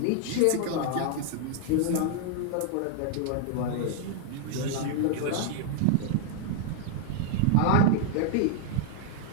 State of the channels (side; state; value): both; different; correlation 0.00